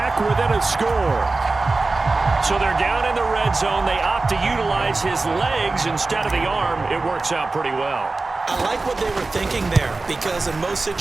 within a score. So they're down in the red zone. They opt to utilize his legs instead of the arm. It works out pretty well. I like what they were thinking there, because in most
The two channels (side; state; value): left; quieter; 3.5 dB